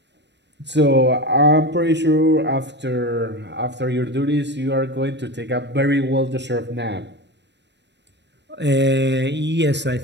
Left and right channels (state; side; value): late; left; 0.51 ms